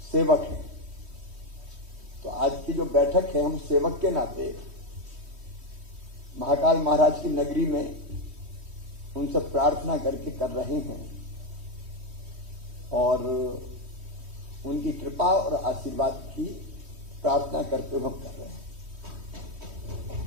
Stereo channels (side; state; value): left; late; 3.1 ms